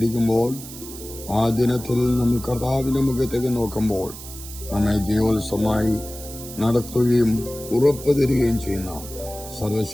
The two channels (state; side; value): noise; right; hiss, 13 dB below the sound